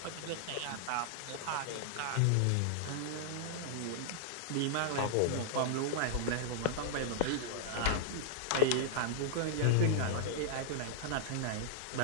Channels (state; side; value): different; both; correlation -0.01